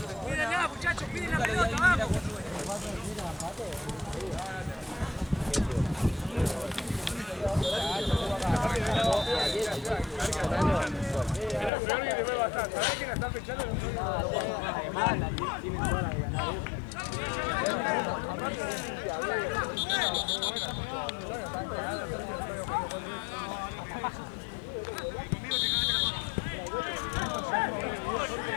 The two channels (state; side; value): drops out; right; at 11.7 s